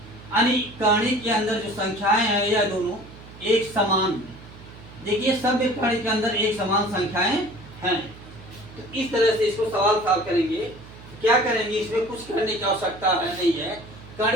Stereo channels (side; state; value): right; noise; hum, 18 dB below the sound